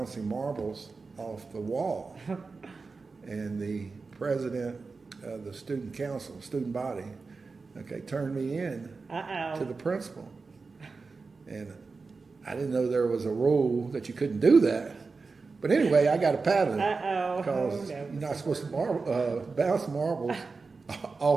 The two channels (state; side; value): quieter; left; 4.3 dB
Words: marbles off the wall. And the president of the student council, student body, turned me in to the principal. And I didn't know there was a rule that you couldn't do that. But anyway, I got a paddling because you're not supposed to bounce marbles